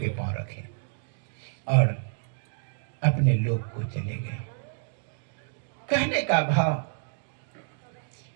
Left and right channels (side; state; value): left; silent; digital silence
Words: पांव रखे और अपने लोक को चले गए। कहने का भाव